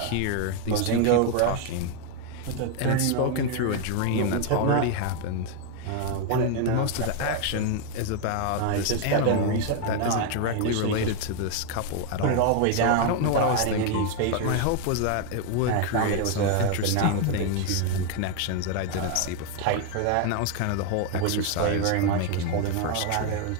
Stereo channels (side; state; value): both; different; correlation 0.00